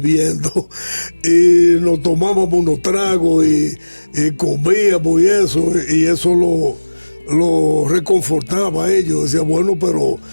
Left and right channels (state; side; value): inverted; both; correlation -1.00